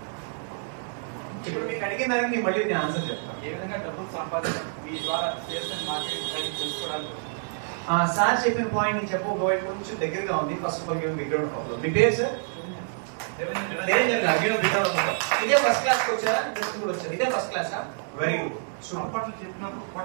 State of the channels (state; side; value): silent; left; digital silence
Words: ఇప్పుడు మీకు అడిగిన దానికి నేను మళ్ళీ నేను ఆన్సర్ చెప్తాను. ఏ విధంగా డబ్బులు సంపాదించాలి మీ ద్వారా మార్కెట్ తెలుసుకోవడానికి. సార్ చెప్పిన పాయింట్ నేను చెప్పబోయే కొంచెం దగ్గరగా ఉంది. ఫస్ట్ ఆఫ్ ఆల్ మీ పేరు సార్? ఇదే ఫస్ట్ క్లాస్ కి వచ్చారా? కూడా వచ్చారు. ఇదే ఫస్ట్ క్లాస్. Very good. సంపట్లు చెప్పినప్పుడు